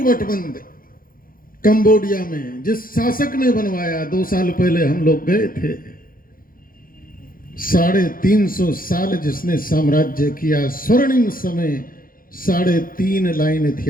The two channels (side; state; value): right; late; 0.41 ms